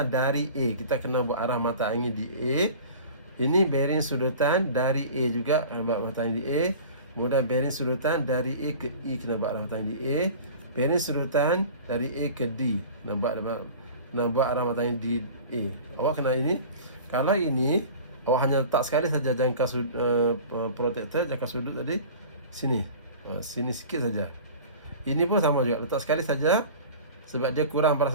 dari A. Kita kena buat arah mata angin di A. Ini bearing sudutan dari A juga, buat mata angin di A. Kemudian bearing sudutan dari A ke E, kena buat arah mata angin di A. Bearing sudutan dari A ke D, kena buat arah mata angin di A. Awak kena ini. Kalau ini, awak hanya letak sekali saja jangka protektor, jangka sudut tadi sini. Sini sikit saja. Ini pun sama juga, letak sekali saja sebab dia kurang pada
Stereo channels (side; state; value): both; inverted; correlation -0.40